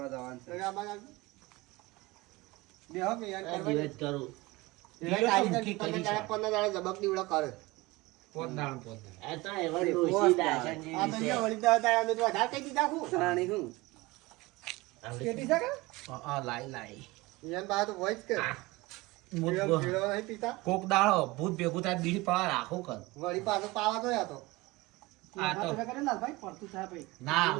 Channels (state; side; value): quieter; left; 21.3 dB